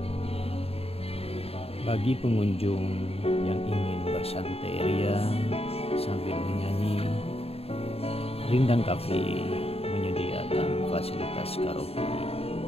Bagi pengunjung yang ingin bersantai ria sambil menyanyi, Rindang Cafe menyediakan fasilitas karaoke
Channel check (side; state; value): right; late; 0.29 ms